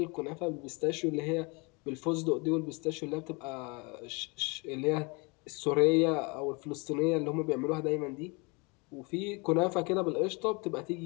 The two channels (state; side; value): quieter; right; 29.5 dB